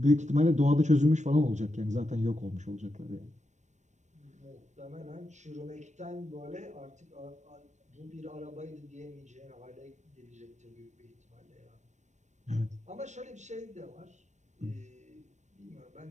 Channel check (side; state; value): left; late; 0.34 ms